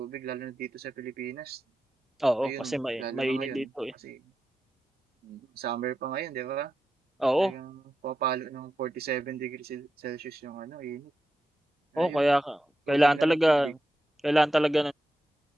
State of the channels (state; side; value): normal; both; correlation 0.89